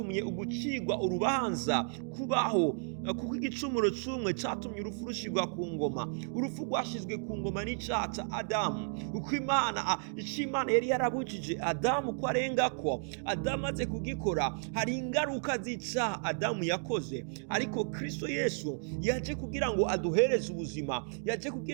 ugucigwa urubanza kubaho, kuko igicumuro c'umwe catumye urupfu rushirwa ku ngoma. Urupfu rwashizwe ku ngoma n'icyaha ca Adamu, uko Imana yari yarabujije Adamu ko arengako. Adamu aze kugikora, hari ingaruka z'icaha Adamu yakoze, ariko Kristo Yesu yaje kugira ngo aduhereze ubuzima, yaje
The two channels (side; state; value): left; silent; 56 dB below the other